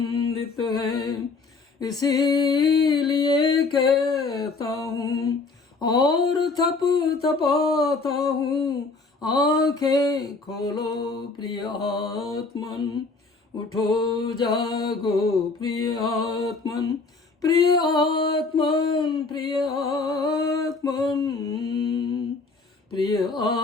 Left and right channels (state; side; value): quieter; right; 4.0 dB